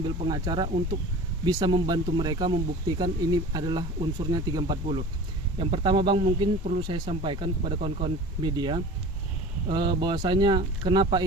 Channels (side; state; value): both; normal; correlation 0.39